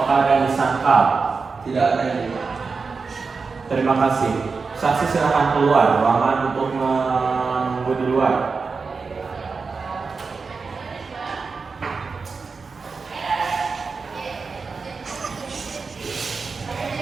ada yang disangkal? tidak ada yang Terima kasih. Saksi silakan keluar ruangan untuk menunggu di luar.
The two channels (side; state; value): left; quieter; 4.7 dB